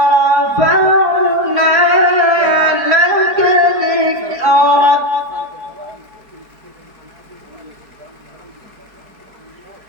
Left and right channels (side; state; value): left; late; 4.7 ms